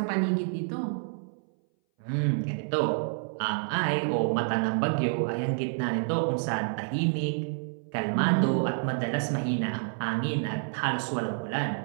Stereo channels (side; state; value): left; silent; 59 dB below the other